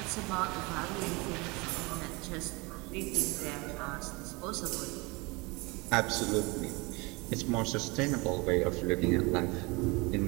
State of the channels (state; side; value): quieter; left; 26.1 dB